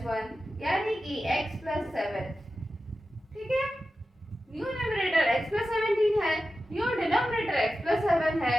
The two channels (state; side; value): normal; both; correlation 0.93